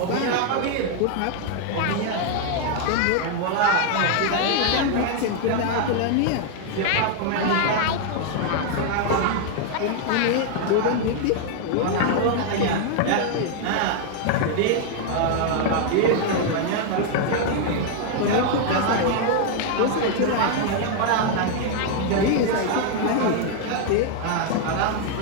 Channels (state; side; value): different; both; correlation 0.00